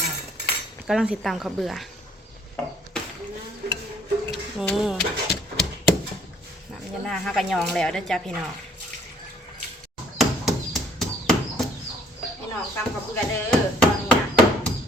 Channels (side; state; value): both; normal; correlation 0.60